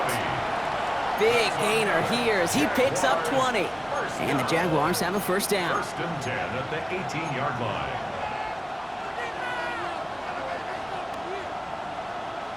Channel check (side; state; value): both; identical; correlation 1.00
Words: Big gainer here as he picks up 20. And the Jaguars have a first down. 1st and 10 at the 18-yard line.